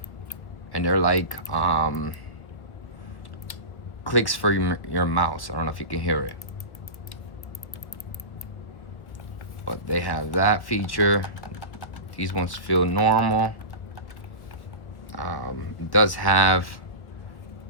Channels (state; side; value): late; right; 1.5 ms